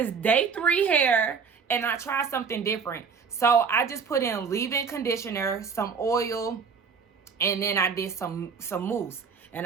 day 3 hair. And I tried something different. So, I just put in leave-in conditioner, some oil, and then I did some mousse.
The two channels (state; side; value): quieter; left; 5.9 dB